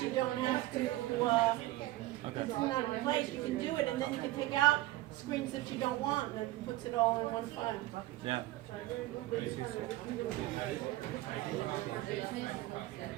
you don't have to, it's not in place, you can do it, and then you can take out screens that you don't want, and it puts it all in one file. Yeah.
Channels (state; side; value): quieter; left; 16.8 dB